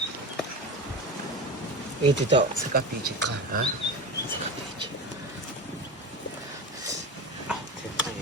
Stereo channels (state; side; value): normal; both; correlation 0.26